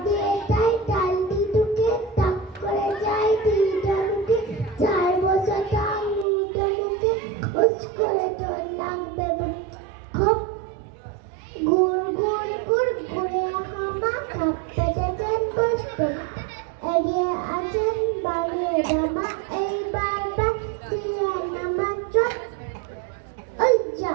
দিয়ে যায় ডাল দি ঢুকে, টাক করে যায় দিদা ঢুকে, 4 বছর তার মুদো মুখে, উস করে তোর নাক বেবুট খপ, গুড় গুড় গুড় গুড়ে হামা খাপ পেটেছেন কষ্ট, এগিয়ে আছেন বাড়িয়ে জামা, এইবার দিয়ে নামা চট, ওই যা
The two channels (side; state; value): left; drops out; at 6.2 s